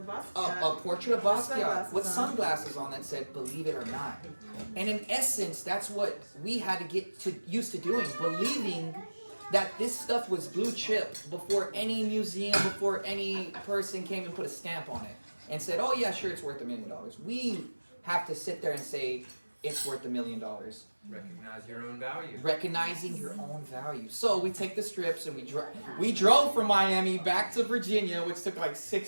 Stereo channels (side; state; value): both; inverted; correlation -1.00